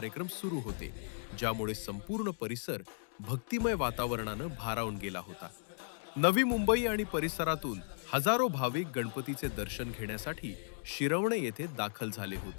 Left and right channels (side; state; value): right; silent; digital silence